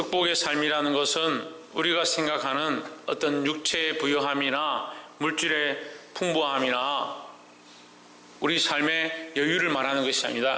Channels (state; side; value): identical; both; correlation 1.00